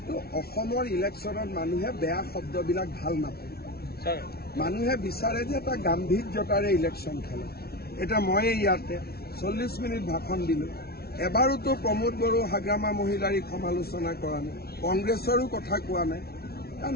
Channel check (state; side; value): late; right; 0.45 ms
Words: অসমৰ ইলেকশ্যনত মানুহে বেয়া শব্দবিলাক ভাল নাপায়। মানুহে বিচাৰে যে এটা গাম্ভীৰ্যতাৰে ইলেকশ্যন খেলে। এতিয়া ময়ে ইয়াতে 40 মিনিট ভাষণ দিলোঁ। এবাৰোতো প্ৰমোদ বড়ো হাগ্ৰামা মহিলাৰীক সমালোচনা কৰা নাই, কংগ্ৰেছৰো কথা কোৱা নাই। কাৰণ